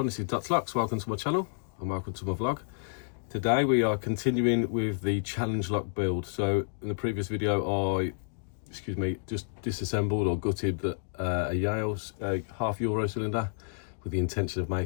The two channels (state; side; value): silent; right; digital silence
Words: this is Dutch Lux. Welcome to my channel and welcome to my vlog. Today we are continuing with the challenge lock build. So in the previous video I just disassembled or gutted a Yale's half euro cylinder with the intention of